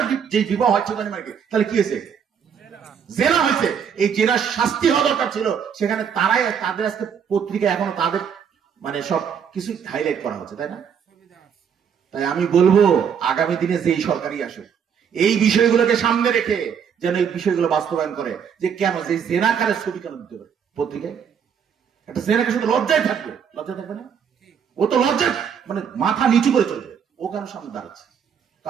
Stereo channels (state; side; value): quieter; left; 7.5 dB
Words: যে বিবাহ হচ্ছে তাহলে কি হয়েছে? জেনা হয়েছে। এই জেনার শাস্তি হওয়া দরকার ছিল, সেখানে তারাই তাদের আজকে পত্রিকায় এখনো তাদের মানে সব কিছু হাইলাইট করা হচ্ছে, তাই না? তাই আমি বলবো, আগামী দিনে যেই সরকারই আসুক এই বিষয়গুলোকে সামনে রেখে যেন এই বিষয়গুলো বাস্তবায়ন করে, যে কেন যে জেনাকারের ছবি কেন দিতে পারে পত্রিকায়? একটা জেনাকে শুধু লজ্জায় থাকবে না, ও তো লজ্জায় মানে মাথা নিচু করে চলবে, ও কেন সামনে দাঁড়াচ্ছে?